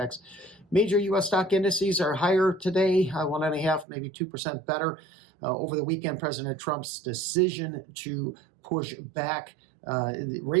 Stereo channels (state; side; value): drops out; left; at 3.9 s